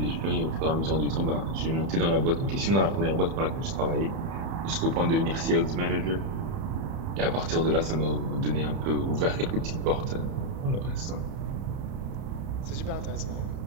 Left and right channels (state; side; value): late; left; 30 ms